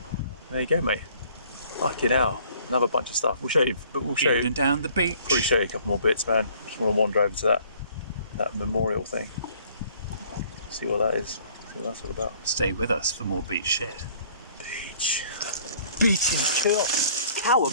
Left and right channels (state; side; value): inverted; both; correlation -0.57